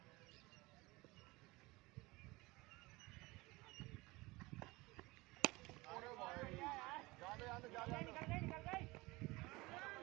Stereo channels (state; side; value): quieter; left; 22.4 dB